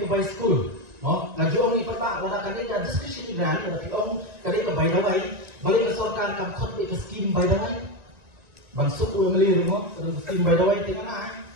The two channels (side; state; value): left; late; 1.9 ms